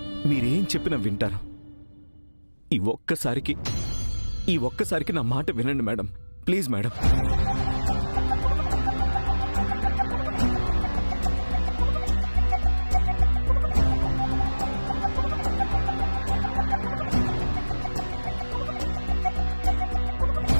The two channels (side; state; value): both; inverted; correlation -1.00